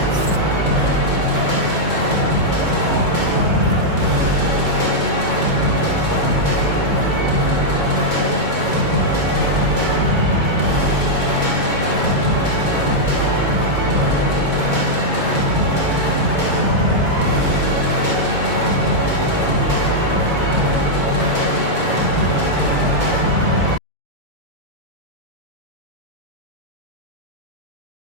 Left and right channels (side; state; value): left; late; 2.2 ms